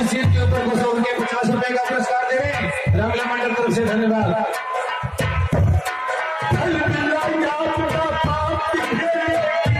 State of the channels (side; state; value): both; identical; correlation 1.00